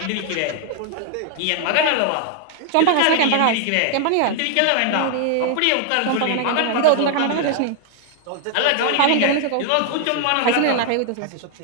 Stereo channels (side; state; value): both; different; correlation 0.00